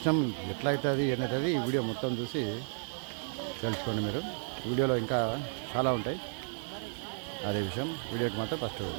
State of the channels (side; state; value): left; silent; digital silence